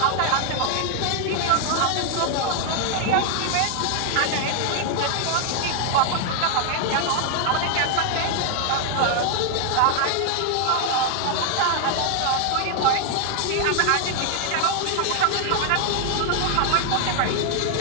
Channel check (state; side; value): different; both; correlation 0.00